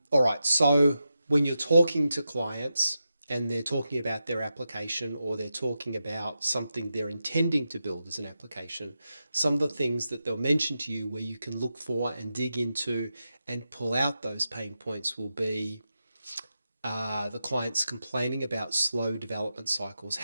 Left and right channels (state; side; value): inverted; both; correlation -0.89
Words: right, so when you're talking to clients and they're talking about their application or they're talking about something they're intending to build as an application, some of the things that they'll mention to you where you can look for and dig into and pull out those pain points will be the clients complaining about slow development cycles,